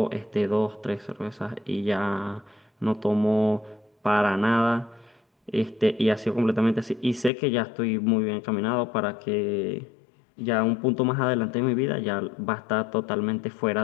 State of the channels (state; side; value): drops out; right; at 7.3 s